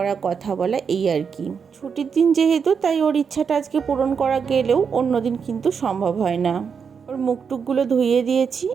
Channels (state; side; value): quieter; left; 6.3 dB